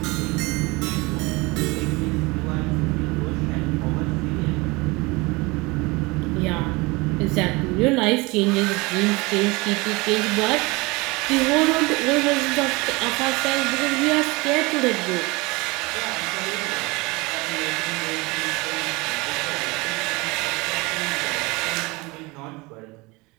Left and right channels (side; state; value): left; quieter; 24.5 dB